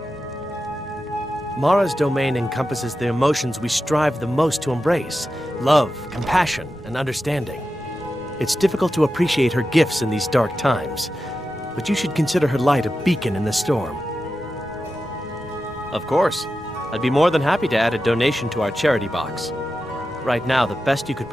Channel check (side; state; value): both; normal; correlation 0.91